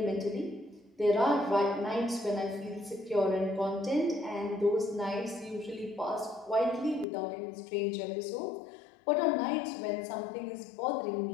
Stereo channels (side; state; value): right; drops out; at 7.1 s